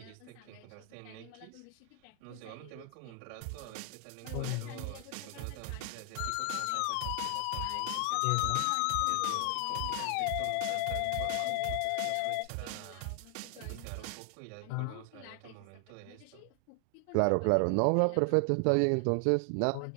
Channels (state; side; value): different; both; correlation 0.00